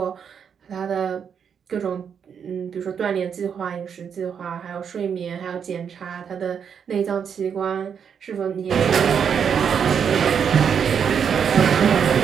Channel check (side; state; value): left; quieter; 7.4 dB